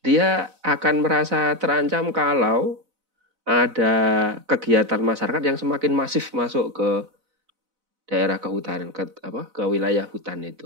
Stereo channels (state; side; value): late; left; 4.0 ms